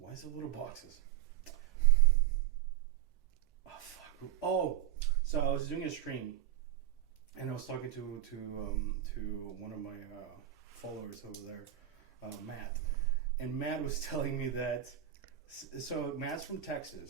is it little boxes? Oh fuck. Oh, so I was doing a stream and I was talking to one of my followers over there, Matt. And Matt was telling me that so Matt's from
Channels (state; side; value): quieter; left; 11.9 dB